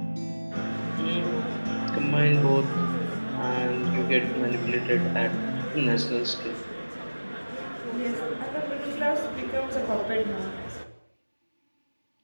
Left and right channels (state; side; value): inverted; both; correlation -1.00